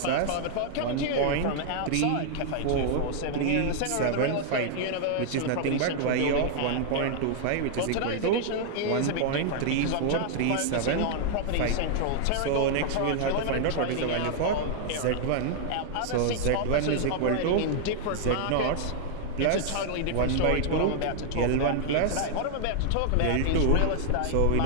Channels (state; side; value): different; both; correlation 0.00